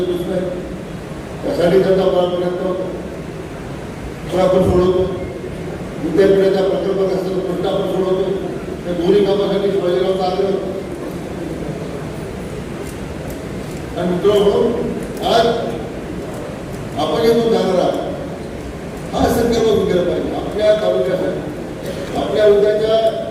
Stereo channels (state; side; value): identical; both; correlation 1.00